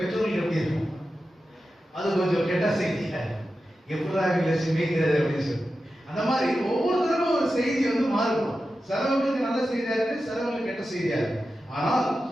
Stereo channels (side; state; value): both; normal; correlation 0.92